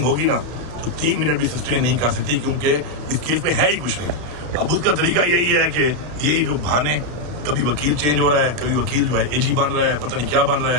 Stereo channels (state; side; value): late; left; 33 ms